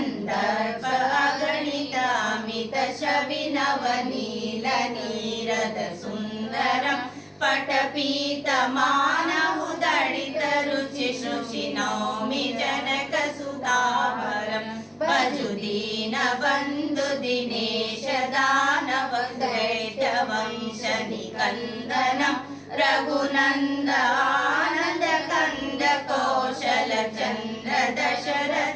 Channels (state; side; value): identical; both; correlation 1.00